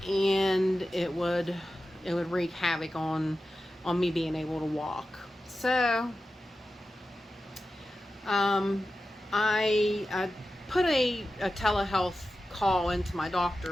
and it would wreak havoc on me being able to walk. So I put a telehealth call into my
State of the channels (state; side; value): normal; both; correlation 0.93